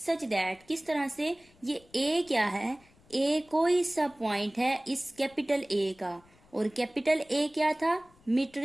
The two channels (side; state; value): left; noise; rumble, 29 dB below the sound